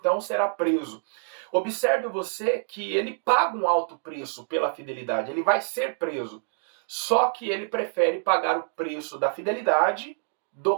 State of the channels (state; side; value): silent; left; digital silence